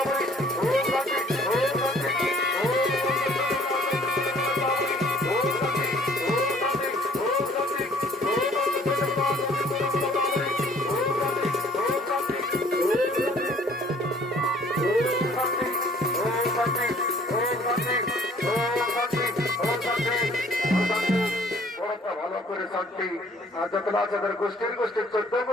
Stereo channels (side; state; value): both; normal; correlation 0.57